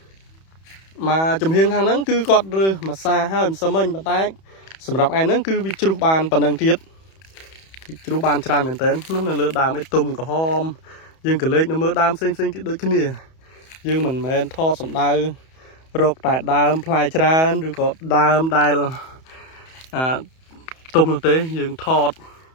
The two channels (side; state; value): right; late; 31 ms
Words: មកចំហៀងខាងហ្នឹងគឺគាត់រើសម្សាហើយមិនសឹមមិញប៉ុន្តែសម្រាប់ឯហ្នឹងគឺវាជ្រុះបានប៉ុណ្ណឹងទៀតជ្រុះបានច្រើនមែនទែននោះនៅលើដើមអីទុំក្រហមយើងក៏លេចនៅមើលដើមផ្សេងទៀតដូចគ្នាយើងមិនមែនថតសម្ដៅរកតែដើមផ្លែច្រើនឬក៏ដើមដែលទុំនោះទេយើងថត